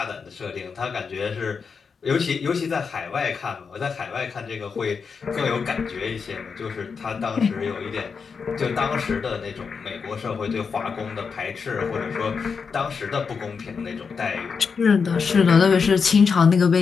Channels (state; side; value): quieter; right; 5.6 dB